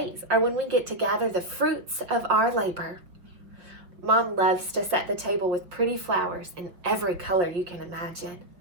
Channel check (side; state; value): left; late; 5.5 ms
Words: are when we get to gather the fruits of our labor. Mom loves to set the table with pretty flowers in every color you can imagine.